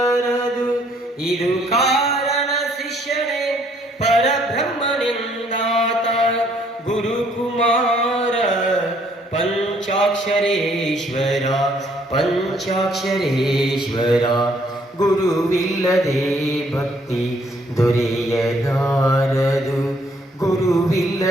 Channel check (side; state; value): both; normal; correlation 0.65